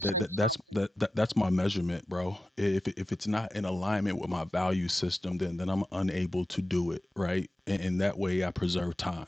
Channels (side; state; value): both; normal; correlation 0.93